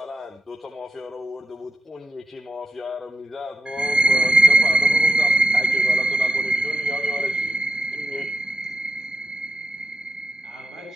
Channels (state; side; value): normal; both; correlation 0.85